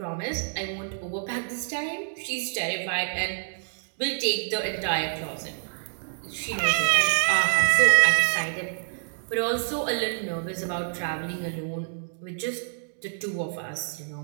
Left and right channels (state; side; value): silent; left; digital silence